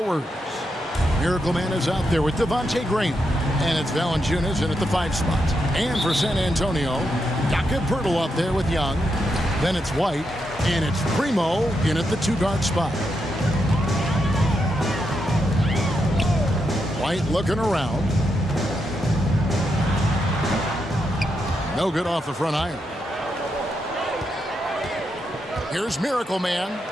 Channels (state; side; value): normal; both; correlation 0.83